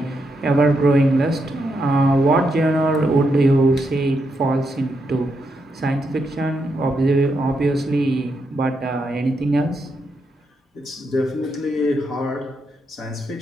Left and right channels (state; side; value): normal; both; correlation 0.81